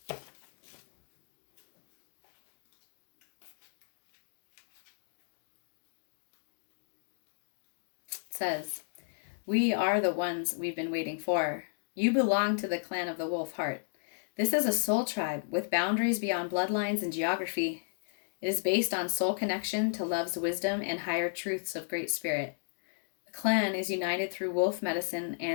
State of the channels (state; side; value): silent; right; digital silence